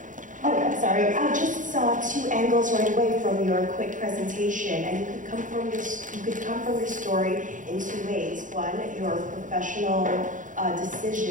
Oh, I'm sorry. I just saw two angles right away from your quick presentation, and you could come from your story in two ways. One, your professional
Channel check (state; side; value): late; left; 0.37 ms